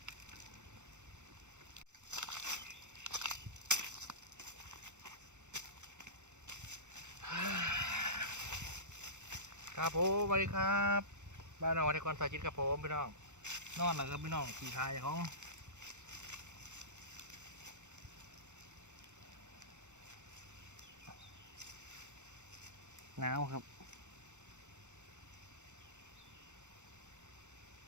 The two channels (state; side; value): late; left; 0.84 ms